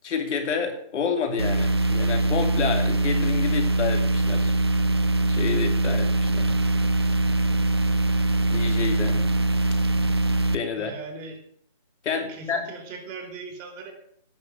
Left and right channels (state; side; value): inverted; both; correlation -0.73